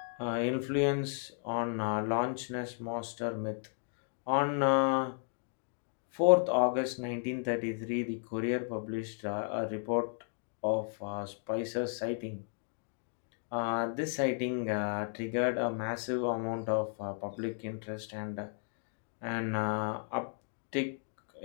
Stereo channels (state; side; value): silent; right; 55 dB below the other